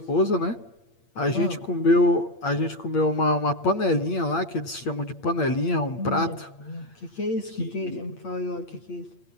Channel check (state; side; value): late; right; 8.6 ms